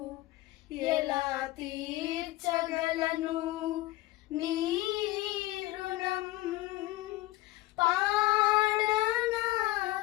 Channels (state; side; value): quieter; right; 18.2 dB